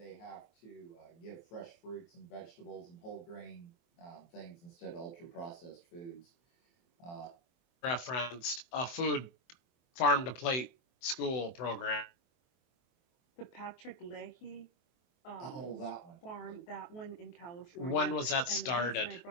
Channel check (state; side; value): late; right; 23 ms